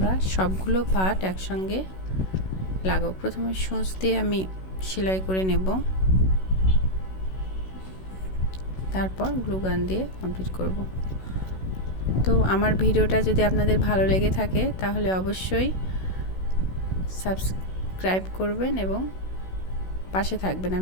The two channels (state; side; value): late; right; 16 ms